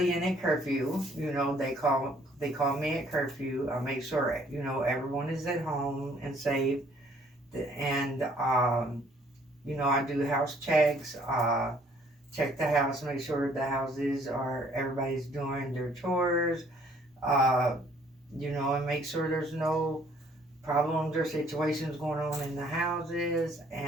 in at curfew. They call me at curfew. I make sure everyone is at home and safe. And I do house checks. Check the house, make sure the houses are everybody's doing their chores. Uh, and make sure there's no problems or situations going on in the houses.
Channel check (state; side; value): normal; both; correlation 0.61